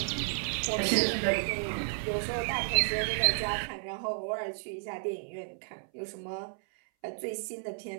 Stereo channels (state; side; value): silent; left; 56 dB below the other